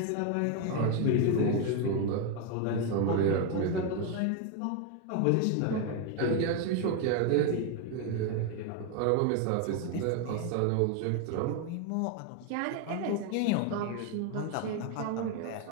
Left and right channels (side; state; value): both; different; correlation 0.01